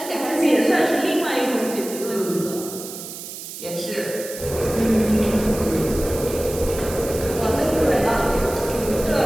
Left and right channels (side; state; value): right; noise; hiss, 11 dB below the sound